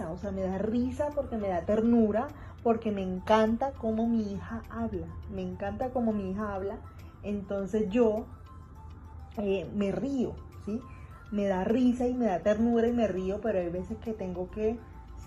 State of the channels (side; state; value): both; identical; correlation 1.00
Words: o sea, me da risa porque me da ternura, porque me encanta cómo mi hija habla, me encanta cómo mi hija habla, entonces yo me río, ¿sí? Me da risa y me da ternura y me río, pero hay veces que tengo que